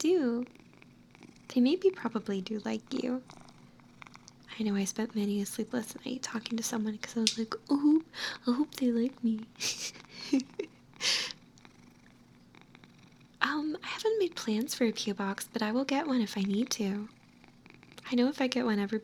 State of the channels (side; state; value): both; identical; correlation 1.00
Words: they maybe probably do like you. I know I spent many a sleepless night talking to someone because I was like, oh, I hope they like me. I haven't made plans for a P.O. box, but I will get one if I need to. I know if I get one,